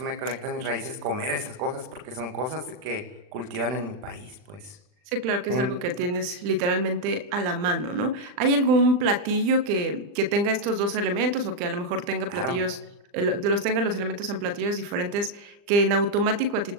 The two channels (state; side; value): late; left; 39 ms